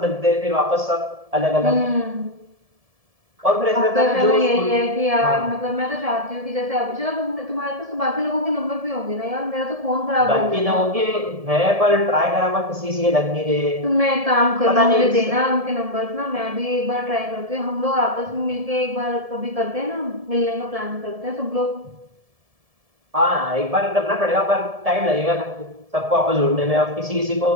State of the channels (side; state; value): left; late; 1.7 ms